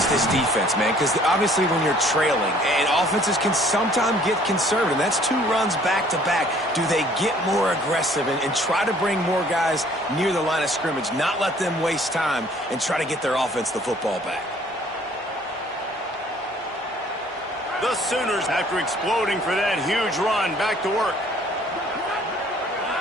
this defense, man, because obviously when you're trailing, and offenses can sometimes get conservative. That's 2 runs back-to-back. Do they get more aggressive and try to bring more guys near the line of scrimmage, not let them waste time, and try to get their offense the football back? The Sooners, after exploding for that huge run, back to work.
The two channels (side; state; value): both; normal; correlation 0.57